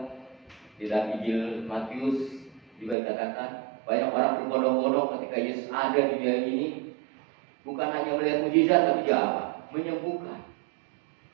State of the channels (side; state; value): left; drops out; at 3.0 s